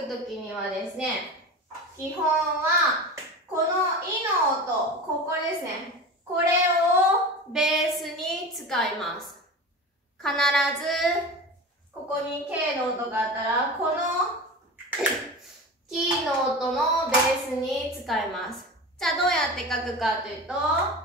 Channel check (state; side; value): normal; both; correlation 0.30